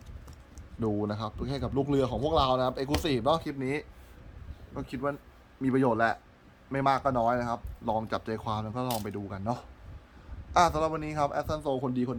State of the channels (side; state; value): both; identical; correlation 1.00